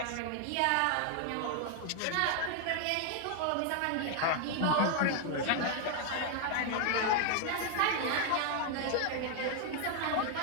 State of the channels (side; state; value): both; different; correlation 0.00